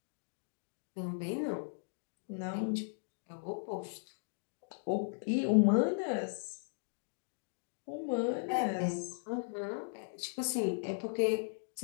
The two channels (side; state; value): right; silent; digital silence